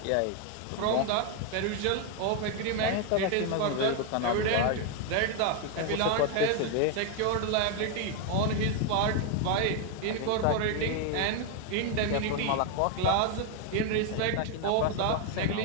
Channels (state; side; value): different; both; correlation 0.01